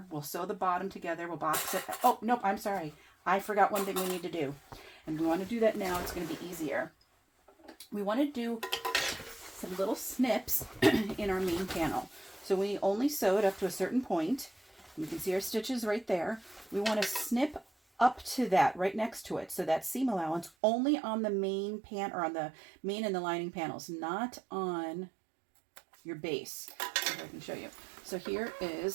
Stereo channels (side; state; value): left; drops out; at 20.5 s